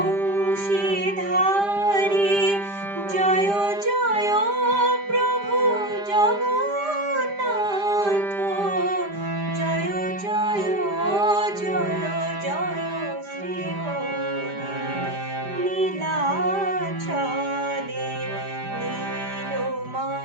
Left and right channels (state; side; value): late; left; 5.0 ms